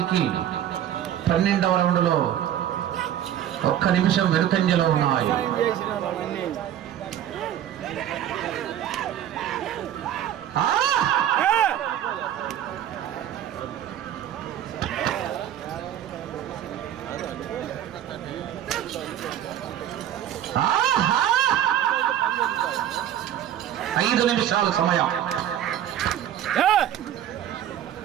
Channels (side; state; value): left; quieter; 10.9 dB